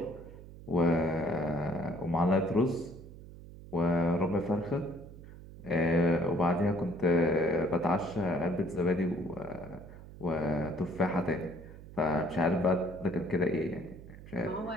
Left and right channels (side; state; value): right; noise; hum, 16 dB below the sound